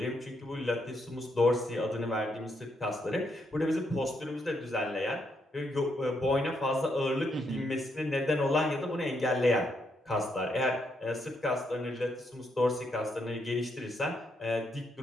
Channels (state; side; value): normal; both; correlation 0.77